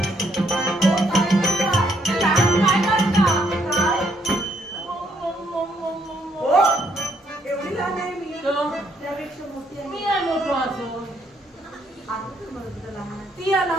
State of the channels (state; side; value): normal; both; correlation 0.71